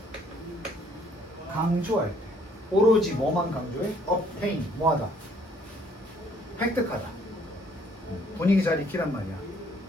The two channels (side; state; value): both; normal; correlation 0.63